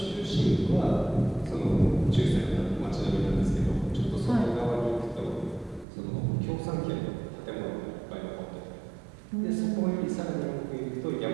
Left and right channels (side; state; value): left; drops out; at 5.9 s